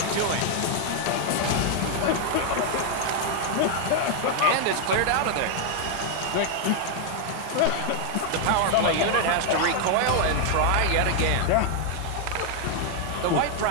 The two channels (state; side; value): different; both; correlation 0.00